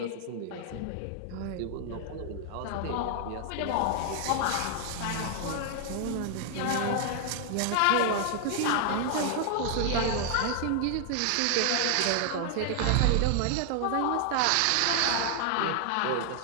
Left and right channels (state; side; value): different; both; correlation 0.00